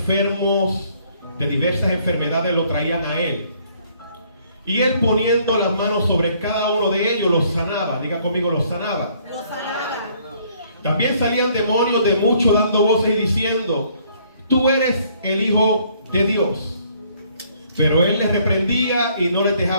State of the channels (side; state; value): both; inverted; correlation -0.64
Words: de diversas enfermedades lo traían a él. Y él, poniendo las manos sobre cada uno de ellos, los sanaba. Diga conmigo, los sanaba. Los sanaba. También salían demonios de muchos, dando voces y diciendo: tú eres el Hijo de Dios. Pero él les reprendía y no les